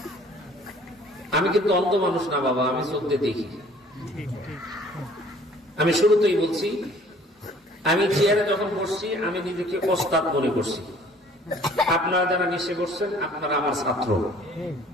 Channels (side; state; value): both; normal; correlation 0.54